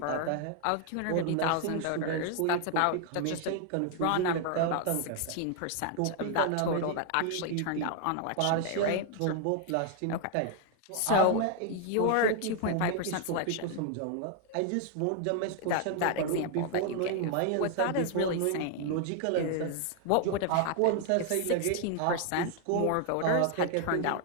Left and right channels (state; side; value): different; both; correlation 0.00